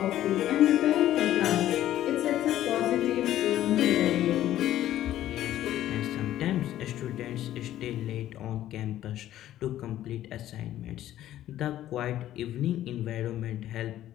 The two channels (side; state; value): right; quieter; 12.9 dB